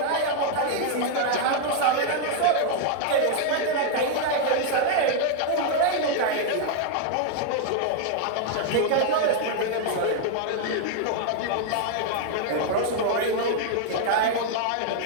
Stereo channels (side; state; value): both; different; correlation 0.00